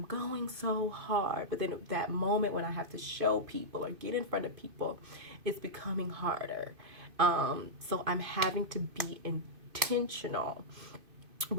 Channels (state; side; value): late; left; 2.5 ms